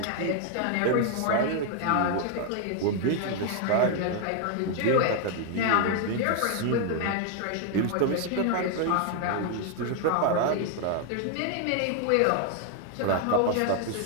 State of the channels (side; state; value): both; different; correlation 0.00